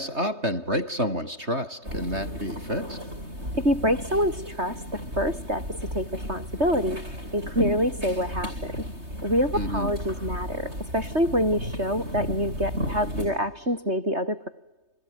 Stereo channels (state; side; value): late; left; 3.2 ms